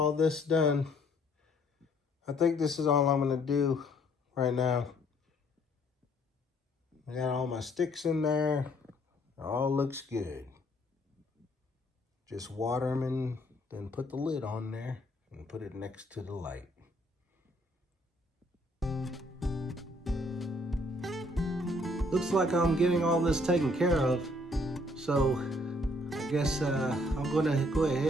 this done. I think this is all I'm gonna do right now. I got all my sticks in there. It all looks good. Just water them and then put the lid on there and put it next to the light. Looks like I'm getting all this taken care of, so I guess I'm gonna go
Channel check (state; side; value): normal; both; correlation 0.64